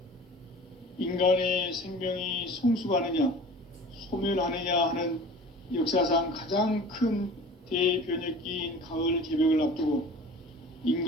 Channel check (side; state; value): both; normal; correlation 0.42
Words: 인간의 생명이 성숙하느냐, 소멸하느냐 하는 역사상 가장 큰 대변혁기인 가을 개벽을 앞두고